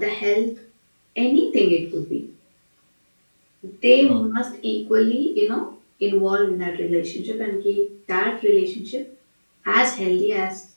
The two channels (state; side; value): inverted; both; correlation -1.00